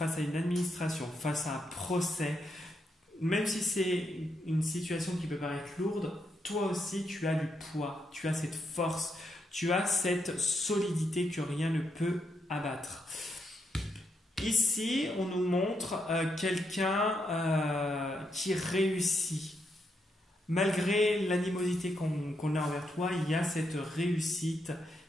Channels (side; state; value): both; normal; correlation 0.80